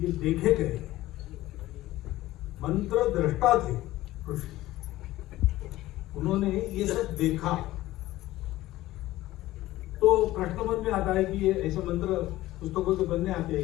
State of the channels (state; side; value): quieter; right; 16.4 dB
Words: देखे गए। मंत्र दृष्टा थे ऋषि, उन्होंने ये सब देखा। तो प्रश्न मन में आता है कि ये ऐसे मंत्र पुस्तकों के बनने आते हैं